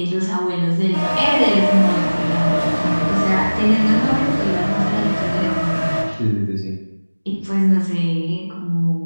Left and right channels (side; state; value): both; inverted; correlation -1.00